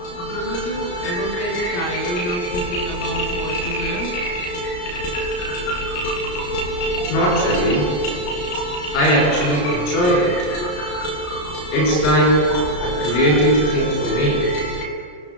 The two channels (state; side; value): late; right; 34 ms